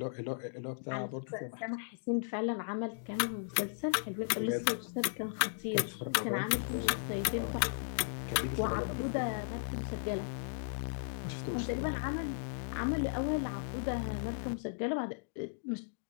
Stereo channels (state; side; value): silent; right; digital silence